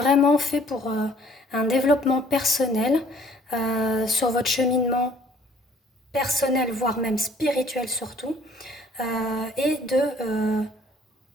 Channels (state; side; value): normal; both; correlation 0.57